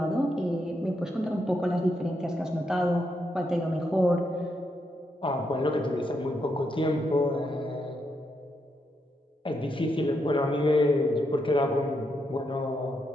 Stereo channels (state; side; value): normal; both; correlation 0.81